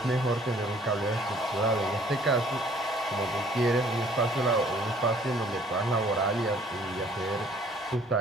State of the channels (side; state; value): both; normal; correlation 0.57